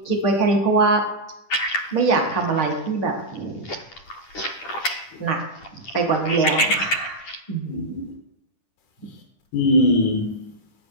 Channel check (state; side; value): late; right; 10 ms